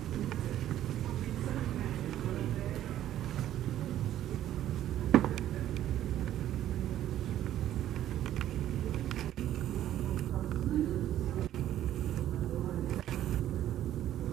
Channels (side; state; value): left; quieter; 12.2 dB